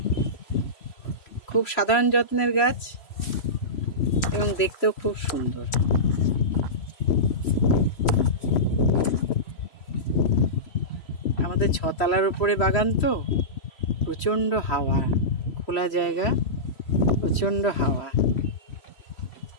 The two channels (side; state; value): right; late; 3.0 ms